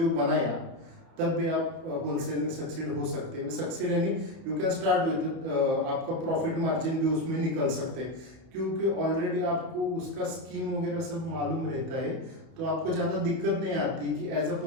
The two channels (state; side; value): late; left; 31 ms